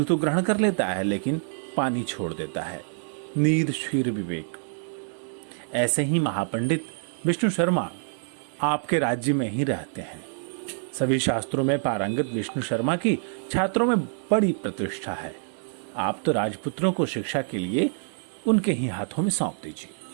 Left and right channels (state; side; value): silent; left; digital silence